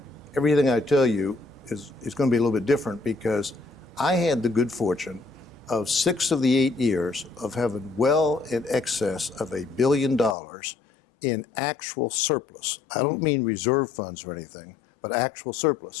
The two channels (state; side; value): drops out; right; at 10.4 s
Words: everything I tell you is going to be a little bit different because I had the good fortune of 6 of the 8 years of having well in excess of $1 billion in actual surplus. I don't mean reserve funds or anything, but actual